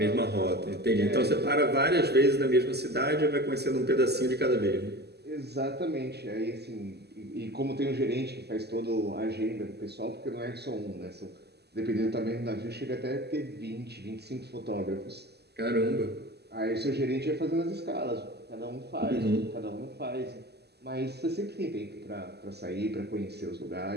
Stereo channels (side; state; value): left; late; 0.48 ms